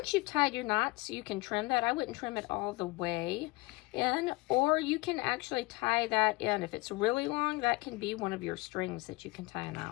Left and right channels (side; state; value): right; quieter; 22.9 dB